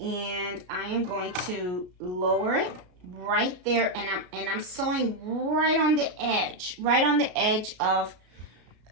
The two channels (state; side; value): late; left; 33 ms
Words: I am going to lower it right there, and I'm sewing right on the edge of